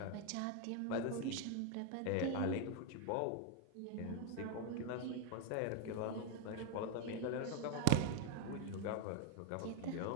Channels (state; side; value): different; both; correlation 0.01